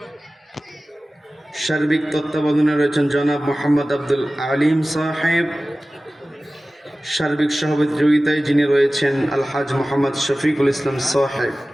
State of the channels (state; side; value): normal; both; correlation 0.96